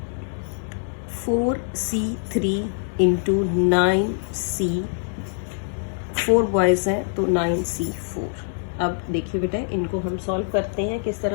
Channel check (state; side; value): silent; right; digital silence